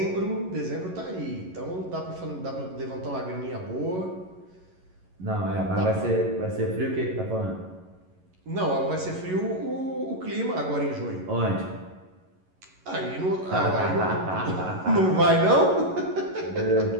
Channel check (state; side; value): late; left; 11 ms